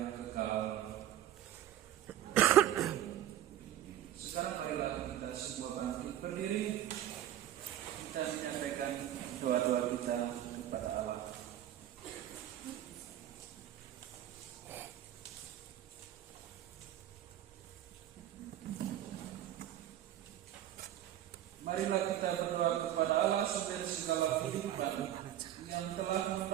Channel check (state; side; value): quieter; left; 11.9 dB